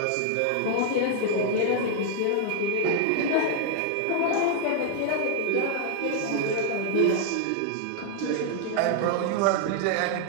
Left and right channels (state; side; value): different; both; correlation 0.00